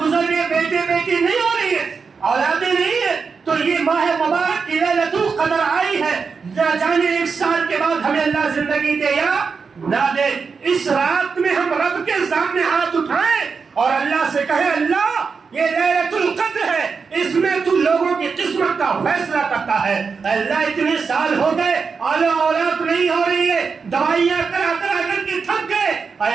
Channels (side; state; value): left; quieter; 5.3 dB